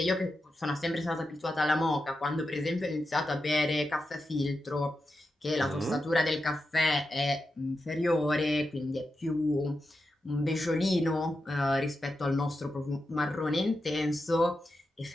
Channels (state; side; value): normal; both; correlation 0.89